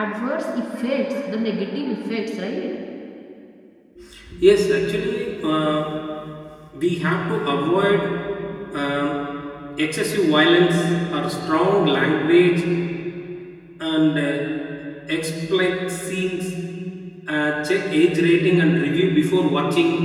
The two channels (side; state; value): both; identical; correlation 1.00